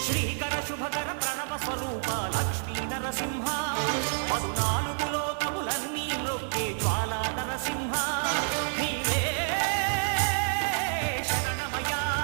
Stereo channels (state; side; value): silent; left; digital silence